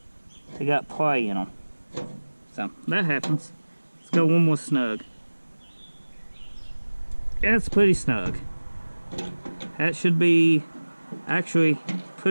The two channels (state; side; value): inverted; both; correlation -1.00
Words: got play in them. So that happens. Let's go one more snug. That's pretty snug. That should be actually